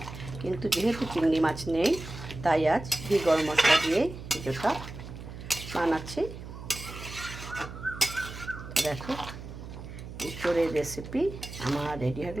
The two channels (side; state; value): right; noise; hum, 11 dB below the sound